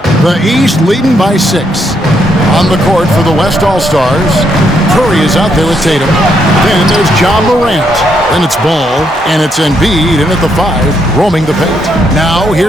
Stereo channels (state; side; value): normal; both; correlation 0.76